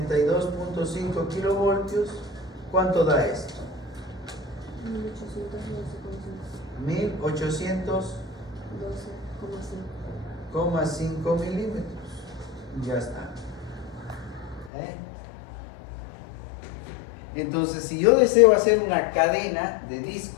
kilovoltios, ¿cuánto da esto? 1812,5 milímetros. Ya está. Entonces, si yo deseo hacer una cadena de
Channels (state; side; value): drops out; right; at 14.7 s